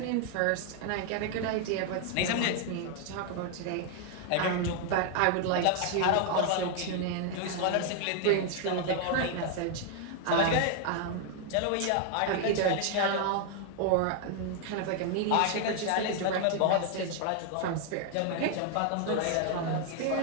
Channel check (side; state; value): both; different; correlation 0.00